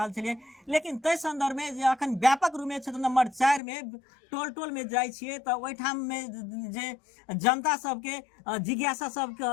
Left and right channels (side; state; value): right; drops out; at 3.6 s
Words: छलियै, लेकिन तै संदर्भ में जे अखन व्यापक रूप में क्षेत्र नंबर 4 में टोल टोल में जाइ छियै तऽ ओहिठाम में जे जनता सबके जिज्ञासा सब